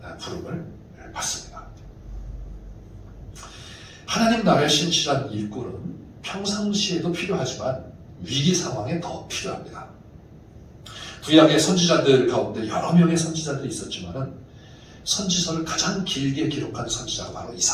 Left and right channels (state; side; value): identical; both; correlation 1.00